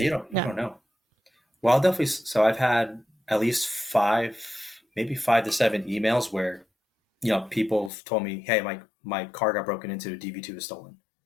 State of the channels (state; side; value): drops out; right; at 7.9 s